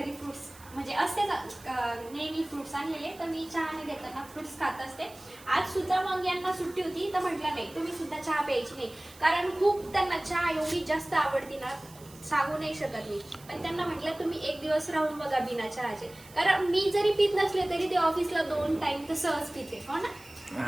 फ्रुट्स म्हणजे असते नेहमी फ्रुट्स आणलेले, तर मी चहा न घेताना फ्रुट्स खात असते. आज सुद्धा मग यांना सुट्टी होती तर म्हटलं नाही, तुम्ही सुद्धा चहा प्यायची नाही. कारण खूप त्यांना चहा एवढी जास्त आवडती ना, सांगू नाही शकत मी. पण त्यांना म्हटलं तुम्ही एक दिवस राहून बघा बिना चहाचे. कारण मी जरी पित नसले तरी ते ऑफिसला 2 टाइम तर सहज पिते, हो ना.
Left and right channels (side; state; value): right; noise; hiss, 21 dB below the sound